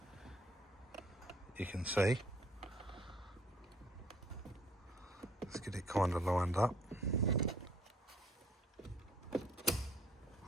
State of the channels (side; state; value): both; normal; correlation 0.60